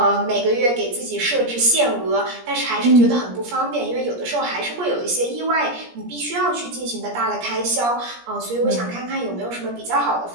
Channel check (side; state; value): left; late; 17 ms